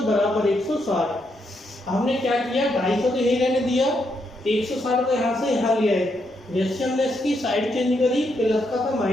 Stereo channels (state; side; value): normal; both; correlation 0.79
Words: बराबर 160। हमने क्या किया 250 तो यही रहने दिया, 160 को यहाँ से यहाँ ले आए, जैसे हमने इसकी साइड चेंज करी, प्लस का था